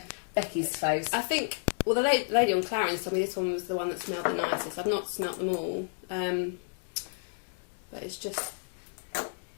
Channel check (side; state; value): right; silent; digital silence